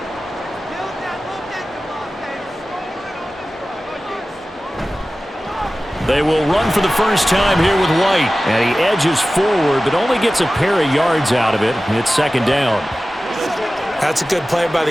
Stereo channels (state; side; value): normal; both; correlation 0.96